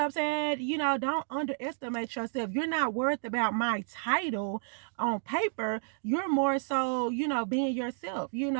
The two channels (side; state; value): left; silent; digital silence